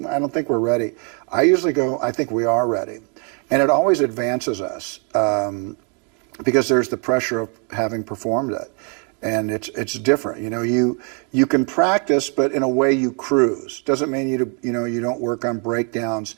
I don't think we're ready. I usually go, I think we are ready. And it always advances us because there's the pressure of having performed it. And it's different. You can practice, but in a way you cruise. Doesn't mean you don't work on breakdowns,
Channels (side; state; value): left; quieter; 37.9 dB